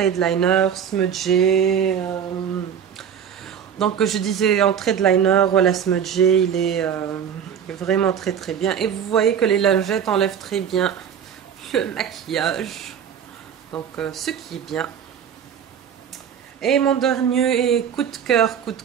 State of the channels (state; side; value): quieter; left; 8.2 dB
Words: liner, smudgé. Donc je disais en trade liner, voilà, smudgé, il est vraiment très bien. Et vous voyez que les lingettes enlèvent très bien le maquillage. Donc ce qui est bien. Et mon dernier coup de